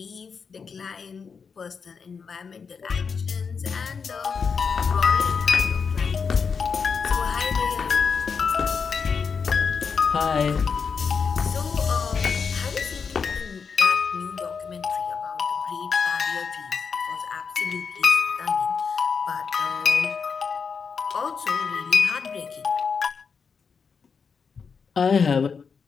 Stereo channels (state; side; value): quieter; right; 5.8 dB